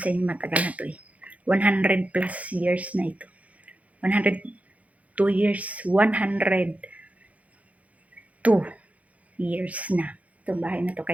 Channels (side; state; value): left; late; 0.068 ms